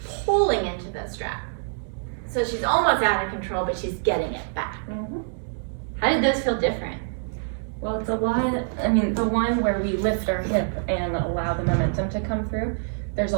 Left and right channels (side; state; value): left; silent; 62 dB below the other